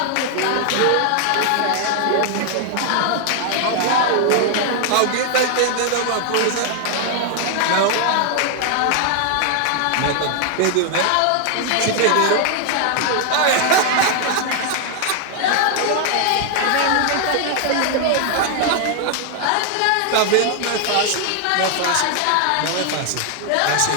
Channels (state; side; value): different; both; correlation 0.00